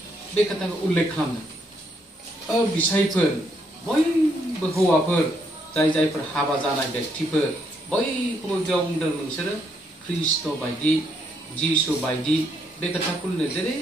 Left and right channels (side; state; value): both; normal; correlation 0.74